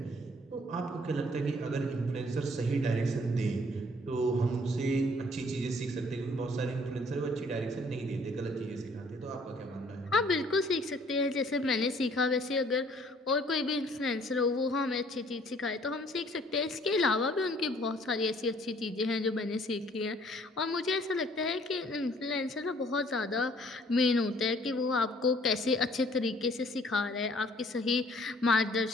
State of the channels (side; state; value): both; normal; correlation 0.59